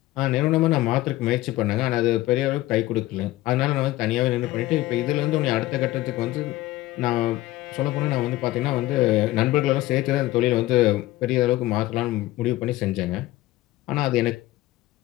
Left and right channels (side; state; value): right; quieter; 17.0 dB